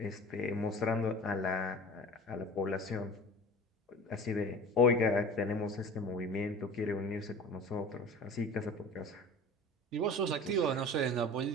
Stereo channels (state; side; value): normal; both; correlation 0.39